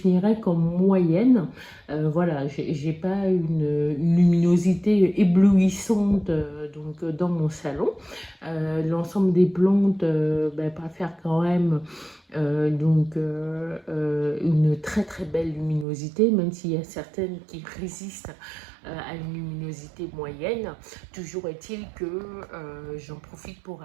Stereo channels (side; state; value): left; drops out; at 15.9 s